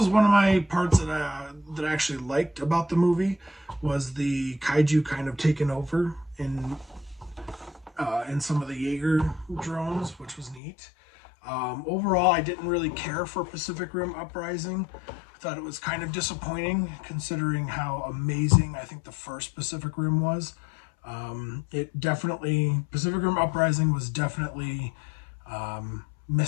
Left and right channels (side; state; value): right; drops out; at 10.6 s